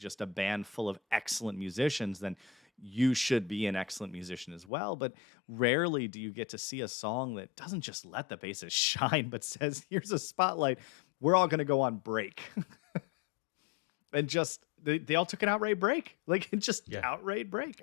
a band full of excellent musicians, then you should be an excellent musician as well. But rarely do you get to see a song that doesn't just let the bassist shine, but says, "Here's a spotlight. We're all going to go on break." And just they all took an outright break, like just Yeah. outright break.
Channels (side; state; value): right; drops out; at 4.7 s